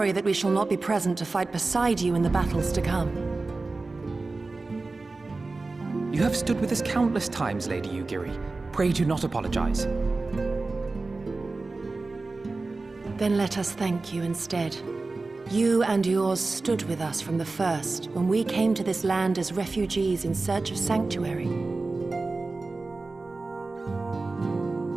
that we shall not be present to fight beside you in the battles to come. You have stood with us countless times, Lady Yugiri. Pray do not apologize. Then let us thank you instead. You and yours stood with us from the first, when we came to this land as refugees in search of sanctuary.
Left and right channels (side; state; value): left; quieter; 3.5 dB